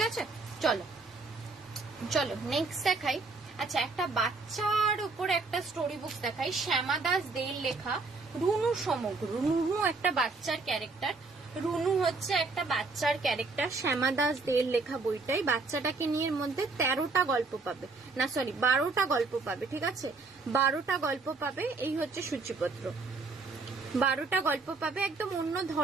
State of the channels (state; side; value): quieter; left; 3.9 dB